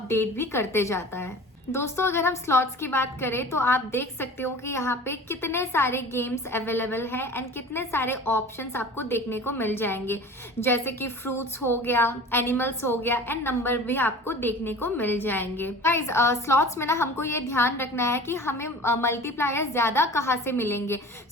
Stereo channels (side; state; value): both; normal; correlation 0.40